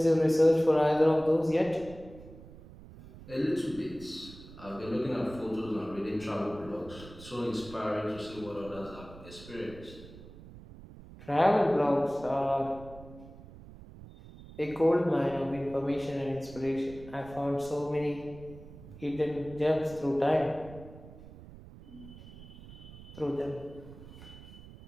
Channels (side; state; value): right; noise; rumble, 17 dB below the sound